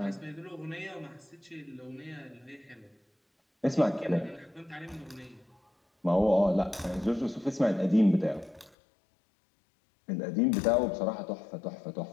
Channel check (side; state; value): right; drops out; at 8.8 s